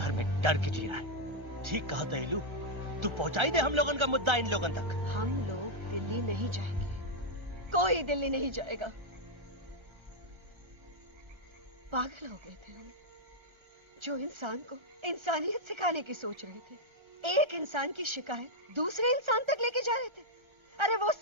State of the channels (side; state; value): left; late; 1.3 ms